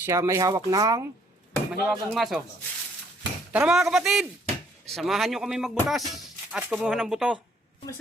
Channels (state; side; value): normal; both; correlation 0.64